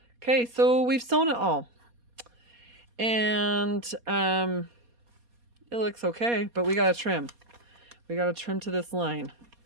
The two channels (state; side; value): late; left; 4.2 ms